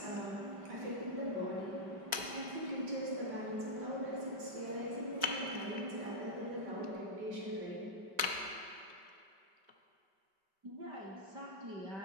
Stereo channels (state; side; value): late; left; 5.2 ms